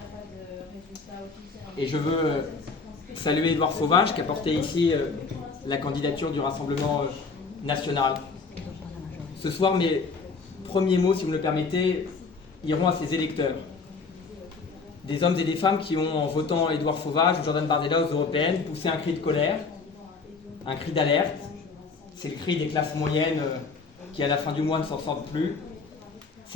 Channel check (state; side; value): quieter; right; 4.5 dB